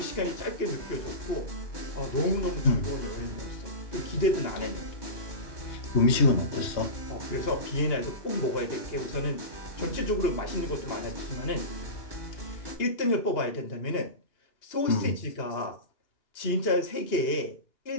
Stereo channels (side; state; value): right; late; 2.8 ms